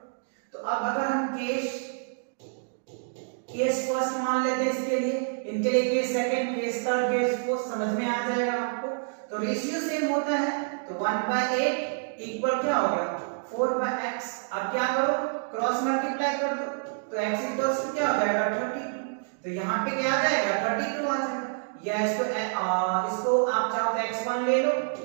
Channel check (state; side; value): silent; left; digital silence